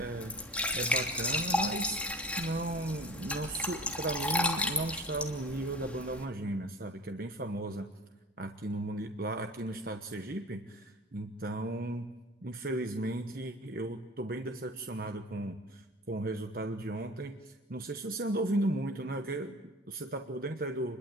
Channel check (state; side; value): normal; both; correlation 0.39